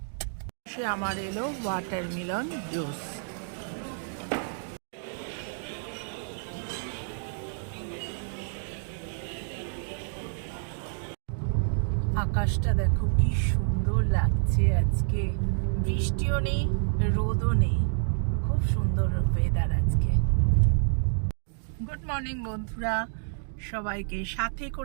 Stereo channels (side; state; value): left; silent; digital silence